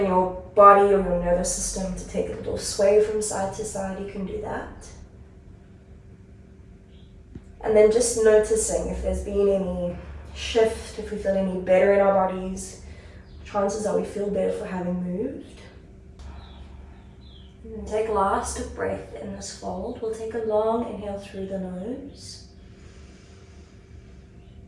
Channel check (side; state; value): both; identical; correlation 1.00